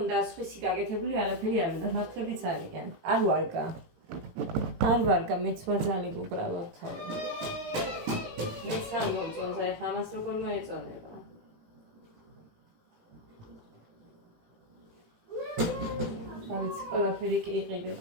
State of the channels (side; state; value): left; late; 18 ms